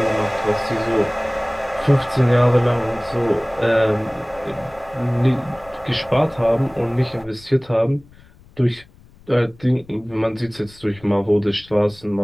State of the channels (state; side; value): noise; left; rumble, 25 dB below the sound